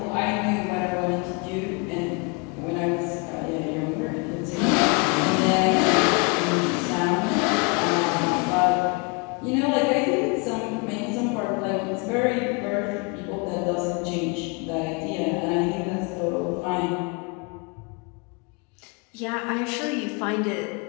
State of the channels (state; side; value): quieter; right; 30.6 dB